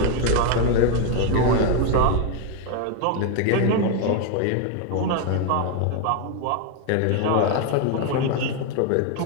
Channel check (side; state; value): both; different; correlation 0.01